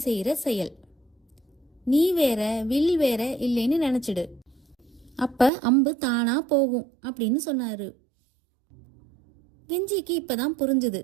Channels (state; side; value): drops out; left; at 5.5 s